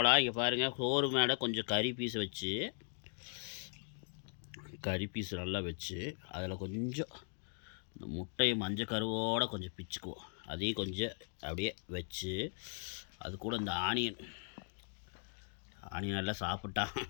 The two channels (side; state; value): right; silent; 52 dB below the other